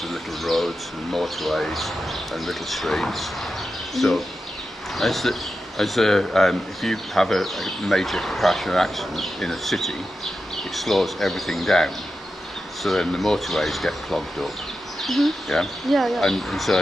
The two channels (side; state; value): both; normal; correlation 0.90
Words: of little roads and motorways and little streets. So, if you have a major crash or accident in a city, it slows everything down. So then the motorways get clogged up. Yeah? And so